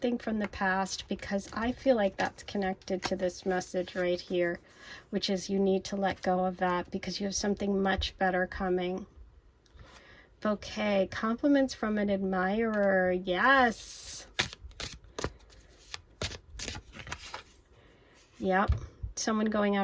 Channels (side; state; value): both; identical; correlation 1.00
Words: from the past? Because I feel like that's connected to this message right here, which is you need to let go of that because you have something much better coming. Bouquet, compliments from an admirer. Yes. Yep. Someone going